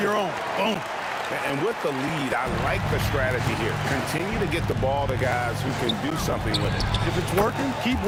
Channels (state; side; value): identical; both; correlation 1.00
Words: own. Boom. And with the lead, I like the strategy here. Continue to get the ball to guys who can do something with it. If it's working, keep